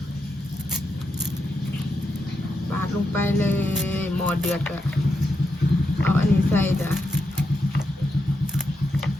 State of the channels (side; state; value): both; normal; correlation 0.84